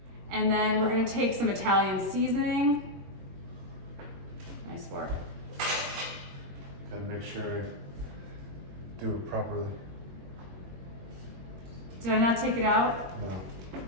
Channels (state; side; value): late; left; 21 ms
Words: And then we're gonna take some Italian seasoning. Nice work. Gotta make sure I do it properly. Did I not take it out? No.